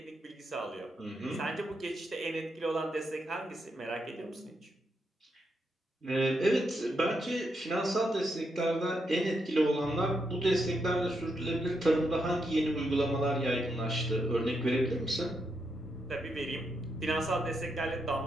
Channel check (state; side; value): normal; both; correlation 0.81